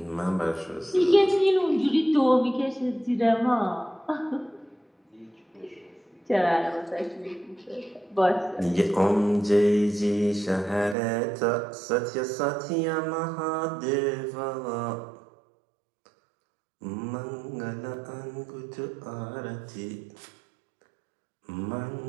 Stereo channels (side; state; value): left; drops out; at 11.0 s